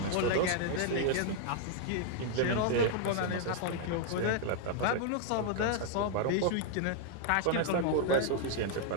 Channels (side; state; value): both; different; correlation 0.00